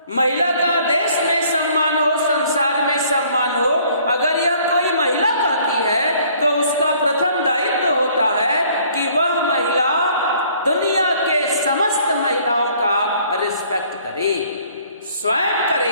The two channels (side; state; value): both; inverted; correlation -0.59